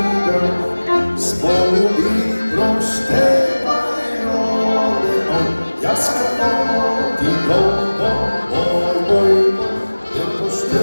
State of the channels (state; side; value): inverted; both; correlation -1.00